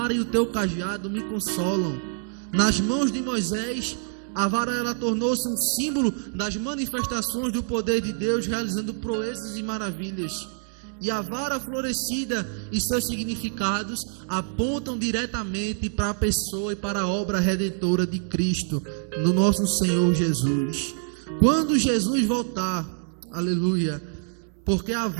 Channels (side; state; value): left; silent; 61 dB below the other